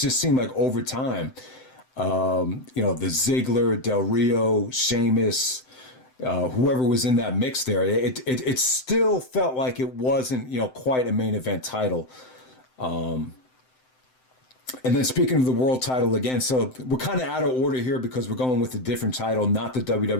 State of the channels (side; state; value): right; late; 7.8 ms